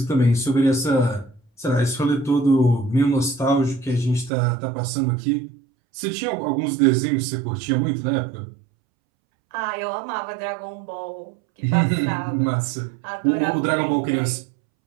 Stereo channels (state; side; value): drops out; left; at 4.3 s